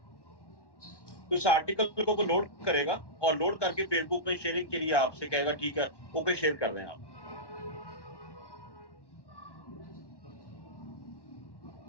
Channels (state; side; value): late; right; 1.2 ms